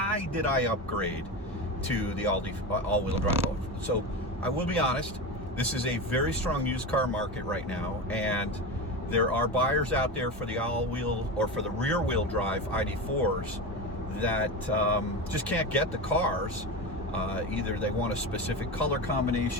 did I upgrade to the all-wheel drive? So I will be honest, this is a very strong used car market right now, and there are buyers out there for the all-wheel or for the rear-wheel drive ID.4s that just can't get the cars. Either they want a specific color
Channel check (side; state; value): both; normal; correlation 0.23